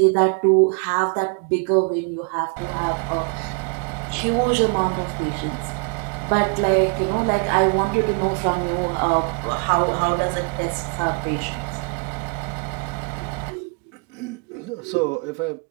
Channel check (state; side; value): quieter; left; 36.2 dB